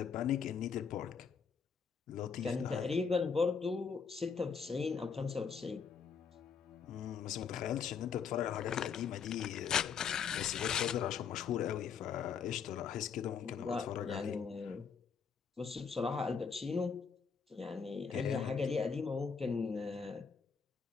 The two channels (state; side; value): quieter; right; 6.2 dB